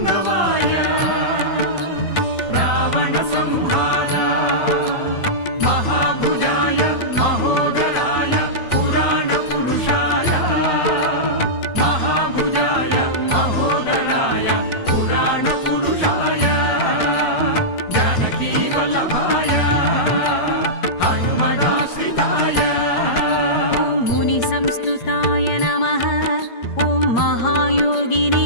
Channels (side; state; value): right; late; 8.7 ms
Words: रावणसंहार महाभुजाय महोदराय